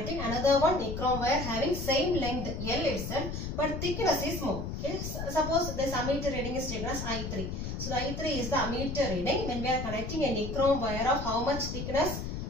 another one nichrome wire having same length L itself but thickness is more. Okay. Suppose this ammeter reading is taken as I3. So the I3 is the ammeter reading when we are connecting a nichrome wire of how much thickness?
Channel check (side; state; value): left; noise; rumble, 5 dB below the sound